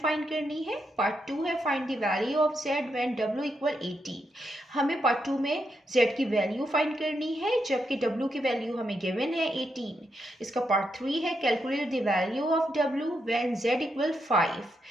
करनी है। पार्ट 2 है find the value of z when w equal 18। हमें पार्ट 2 में z की वैल्यू फाइंड करनी है जबकि w की वैल्यू हमें गिवन है 18। इसका पार्ट 3 है calculate the value of w when z equal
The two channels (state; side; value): normal; both; correlation 0.82